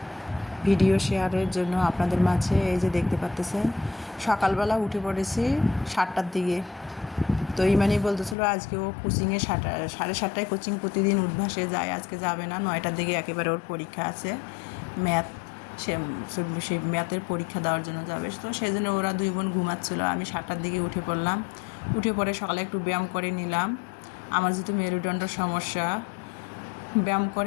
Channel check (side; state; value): right; drops out; at 8.3 s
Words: ভিডিও শেয়ারের জন্য আপনাদের মাঝে। এই যে দেখতে পাচ্তেছেন, সকালবেলা উঠে পড়েছি 7টার দিকে। তো ইমানি বলতেছিল আজকে ও কোচিংয়ে 7:30টায় কোচিং প্রতিদিন উদ্ভাসে যায়, আজকে যাবে না। 9টার দিকে একেবারে ওর পরীক্ষা আছে, ম্যাথ। সে সেই ম্যাথের পরীক্ষা দেওয়ার জন্য যাবে। তো সেই জন্য ওরা দুই বোন ঘুমাচ্ছিলো। আমি 7টার দিকে উঠে পড়লাম। উঠে পড়ে সকালে একটু ব্যায়াম করে নিলাম। আমার যেহেতু মেরুদণ্ডের সমস্যা, ব্যায়াম